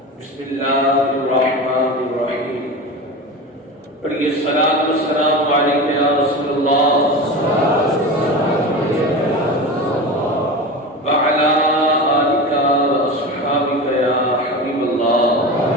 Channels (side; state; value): both; normal; correlation 0.27